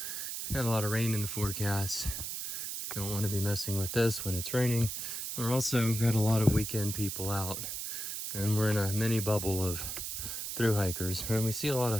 we had a lot of rain in the forecast. Don't want to be messing with this when it's raining. We're also got a lot of weekend people out, and we're in a mini bubble of thru hikers, and we see a lot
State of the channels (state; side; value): noise; right; hiss, 4 dB below the sound